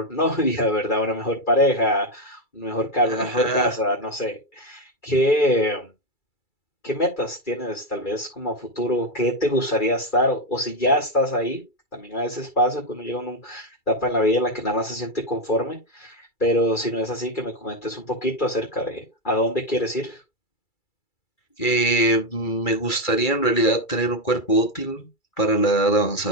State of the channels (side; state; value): right; late; 2.3 ms